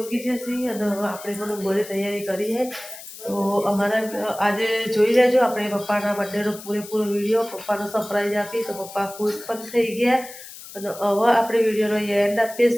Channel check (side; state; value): left; noise; hiss, 15 dB below the sound